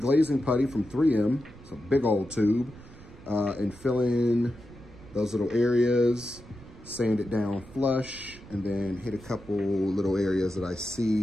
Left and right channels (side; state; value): right; noise; rumble, 20 dB below the sound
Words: putty from 3M. It's a big old tube. And fill in those little areas, sand it down flush, and then hit a couple little areas that I